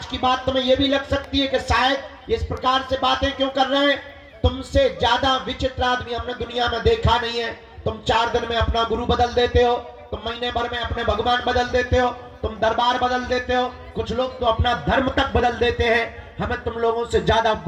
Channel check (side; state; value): both; identical; correlation 1.00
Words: की बात तुम्हें यह भी लग सकती है कि शायद इस प्रकार से बातें क्यों कर रहे हैं। तुमसे ज्यादा विचित्र आदमी हमने दुनिया में देखा नहीं है। तुम 4 दिन में अपना गुरु बदल देते हो, तुम महीने भर में अपने भगवान बदल देते हो, तुम दरबार बदल देते हो, कुछ लोग तो अपना धर्म तक बदल देते हैं। हमें तुम लोगों से ज्यादा